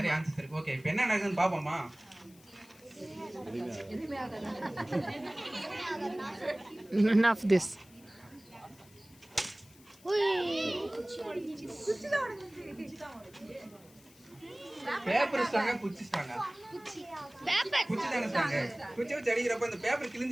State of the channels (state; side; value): noise; left; hiss, 25 dB below the sound